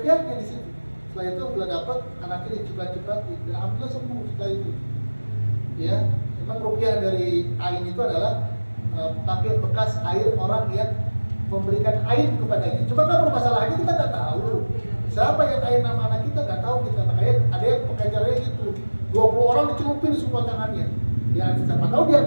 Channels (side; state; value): both; inverted; correlation -1.00